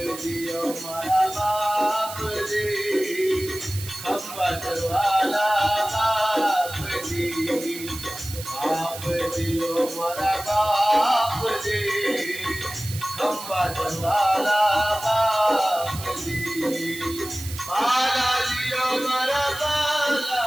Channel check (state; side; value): noise; right; hiss, 11 dB below the sound